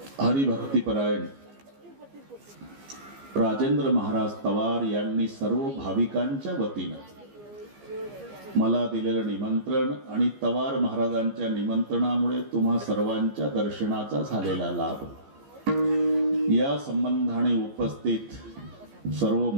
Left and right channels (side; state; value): left; late; 15 ms